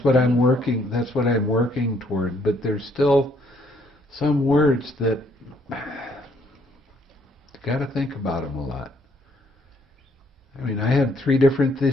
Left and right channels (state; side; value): normal; both; correlation 0.67